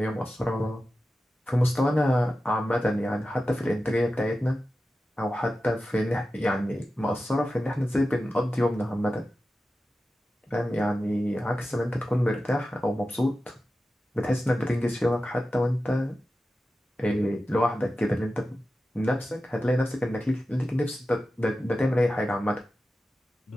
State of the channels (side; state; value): both; normal; correlation 0.93